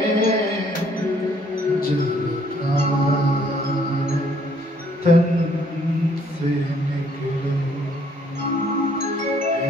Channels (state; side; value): normal; both; correlation 0.64